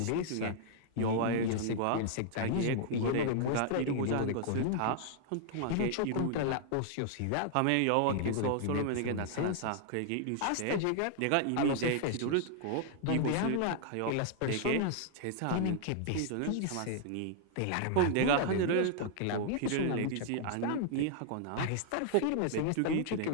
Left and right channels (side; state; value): both; different; correlation -0.01